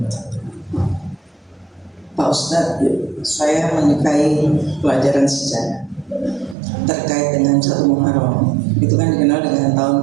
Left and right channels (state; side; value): drops out; left; at 6.6 s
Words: Pak Ustadz, saya menyukai pelajaran sejarah terkait dengan 1 Muharram. Itu kan dikenal dengan tahun